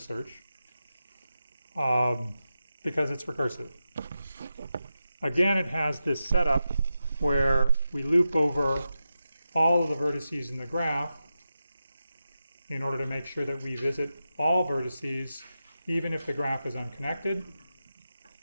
search because it's recursive. Again, it has this setup where we loop over all of the vertices in the graph in order to make sure that we visit all vertices, even if the graph is unconnected.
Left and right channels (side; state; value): both; inverted; correlation -0.90